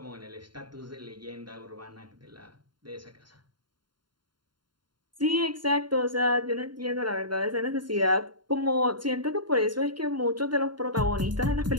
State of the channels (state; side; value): late; left; 0.72 ms